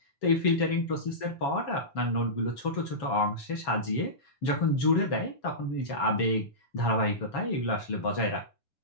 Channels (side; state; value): right; late; 7.3 ms